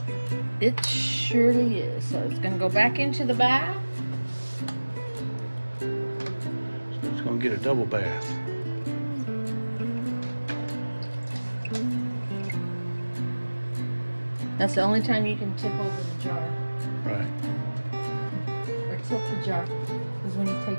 it surely is. So it's gonna go back into the bath. So it's going to get a double bath. That's the only time you can tip over the jar. Right. Or tilt the jar is when you take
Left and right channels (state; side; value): inverted; both; correlation -1.00